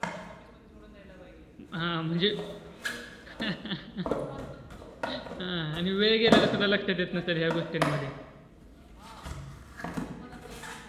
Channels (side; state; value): both; identical; correlation 1.00